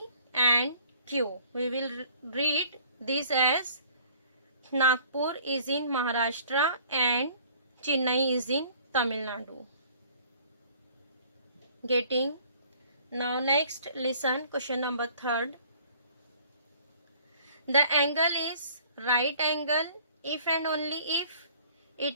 and Q. We will read this as Nagpur is in Maharashtra and Chennai is in Tamil Nadu. Getting? Now next, listen, question number 3. The angle is right angle if and only if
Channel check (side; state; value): both; inverted; correlation -0.54